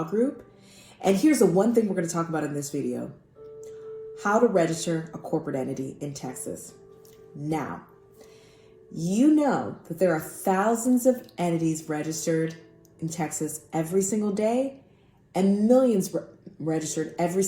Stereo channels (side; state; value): both; identical; correlation 1.00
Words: Group. And here's the one thing we're going to talk about in this video: how to register a corporate entity in Texas. Now, you know that there are thousands of entities registered in Texas every single day and millions registered every